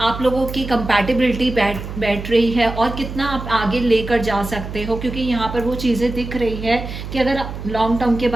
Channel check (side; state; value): right; noise; hum, 9 dB below the sound